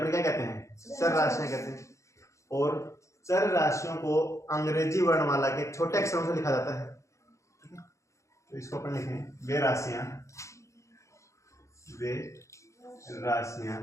क्या कहते हैं? चर राशियां कहते हैं। और चर राशियों को अंग्रेजी वर्णमाला के छोटे अक्षरों से लिखा जाता है। तो इसको अपन लिखें वे राशियां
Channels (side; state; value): right; late; 0.15 ms